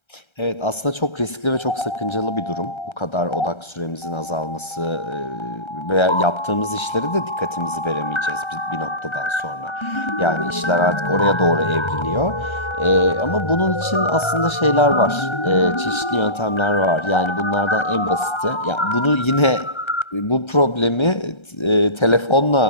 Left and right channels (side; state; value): right; late; 1.3 ms